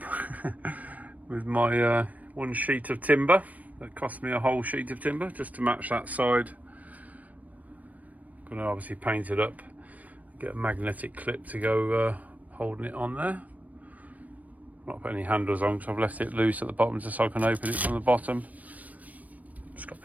with my one sheet of timber. That cost me a whole sheet of timber just to match that side. Going to obviously paint it up. Get a magnetic clip to go holding it on there. Not put any handles on because I've left it loose at the bottom just so I can open it from the bottom. Just got a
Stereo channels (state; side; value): late; left; 0.073 ms